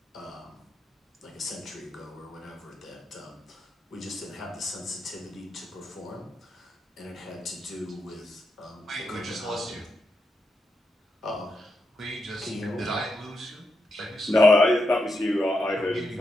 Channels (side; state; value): both; normal; correlation 0.84